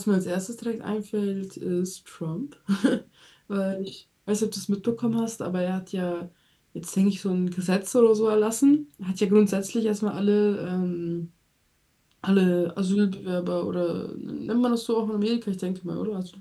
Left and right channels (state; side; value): identical; both; correlation 1.00